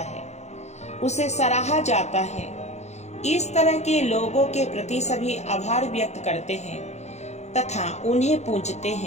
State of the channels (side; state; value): right; late; 0.32 ms